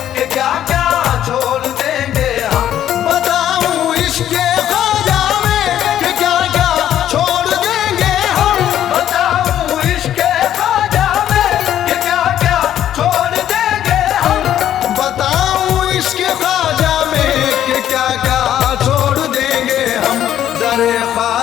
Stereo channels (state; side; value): quieter; right; 11.1 dB